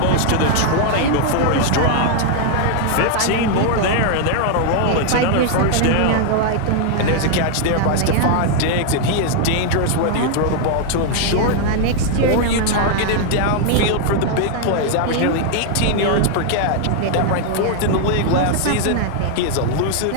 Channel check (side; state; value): both; different; correlation 0.00